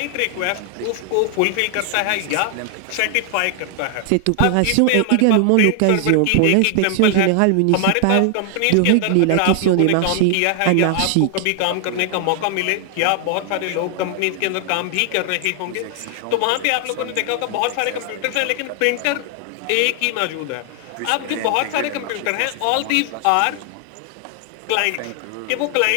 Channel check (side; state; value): both; different; correlation 0.00